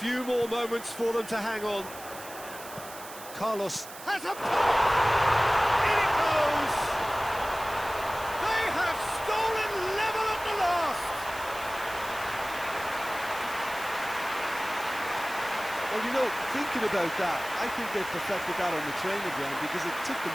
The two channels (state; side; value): noise; right; hiss, 15 dB below the sound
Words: more moments for them to hang on. Carlos Has a pop! In it goes! They have stolen level at the last! Well, you know, thinking about that, I think they've perfected that on the training ground because it took